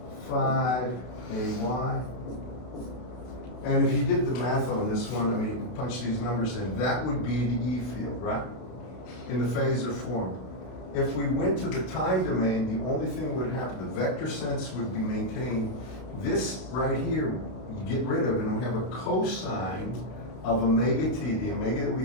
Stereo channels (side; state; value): right; late; 32 ms